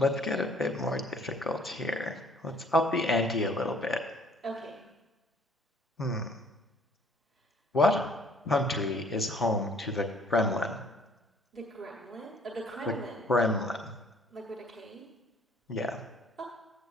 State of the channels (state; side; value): normal; both; correlation 0.58